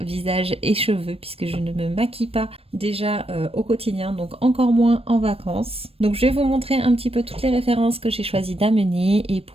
visage et cheveux puisque je ne me maquille pas déjà au quotidien, donc encore moins en vacances. Donc je vais vous montrer un petit peu toutes les références que j'ai choisi d'amener et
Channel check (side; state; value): left; late; 0.28 ms